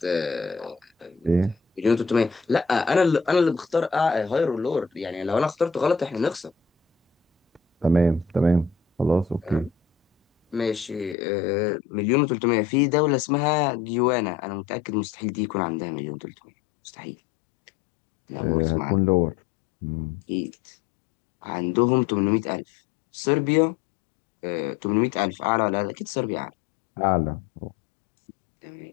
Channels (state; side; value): drops out; right; at 11.2 s